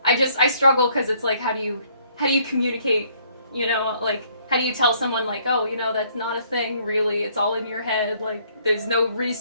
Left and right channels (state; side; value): inverted; both; correlation -0.64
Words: I struggle because it's like, how do you communicate, you know, like, how do you tell someone, like, oh, you know, that's not a thing, really, it's all in your head, like, there's no